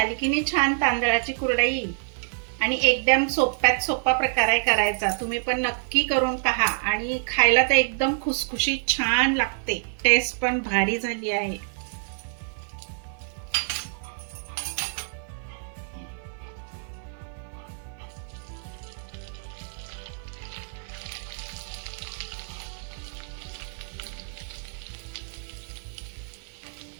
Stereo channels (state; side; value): silent; left; 60 dB below the other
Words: की नाही छान तांदळाची कुरडई. आणि एकदम सोप्यात सोपा प्रकार आहे करायचा. तुम्ही पण नक्की करून पहा आणि खायला तर एकदम खुसखुशीत छान लागते. टेस्ट पण भारी झाली आहे.